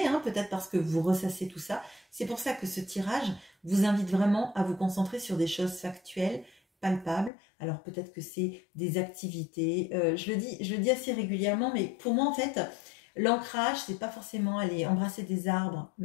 hein, peut-être parce que vous ressassez tout ça. C'est pour ça que ce tirage vous invite vraiment à vous concentrer sur des choses factuelles, palpables. Alors peut-être que c'est des activités. Je le dis assez régulièrement, mais pour moi en fait, l'ancrage, c'est pas forcément aller embrasser des arbres,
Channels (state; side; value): drops out; right; at 7.3 s